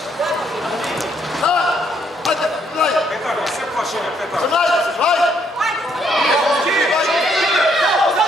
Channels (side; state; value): both; normal; correlation 0.70